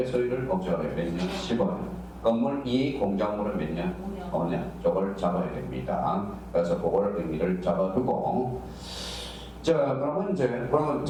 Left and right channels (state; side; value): identical; both; correlation 1.00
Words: 소유를 목적으로 몇 년? 15년. 건물 이익 공작물은 몇 년? 5년. 저걸 잡아야 됩니다. 그래서 그걸 의미를 잡아두고. 자, 그러면